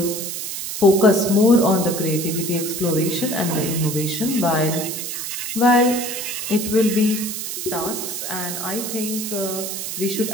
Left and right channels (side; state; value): right; noise; hiss, 5 dB below the sound